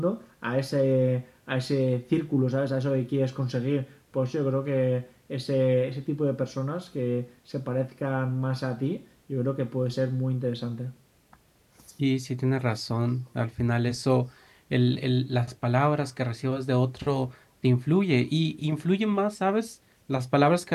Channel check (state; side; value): identical; both; correlation 1.00